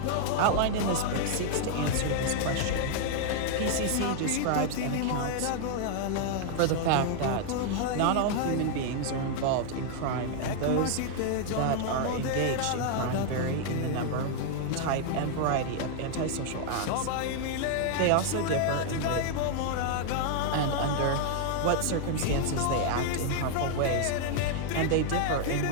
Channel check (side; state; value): both; different; correlation 0.00